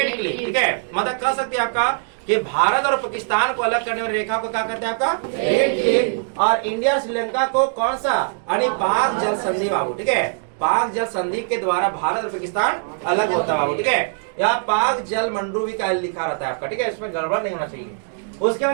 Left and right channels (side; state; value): left; silent; digital silence